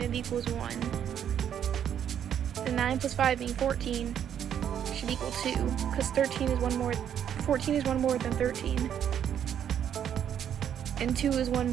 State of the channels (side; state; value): left; quieter; 9.3 dB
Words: it equals 1, then 9 plus 5 being 14 should equal 2, because 14 is one more than 13. And 2 is 1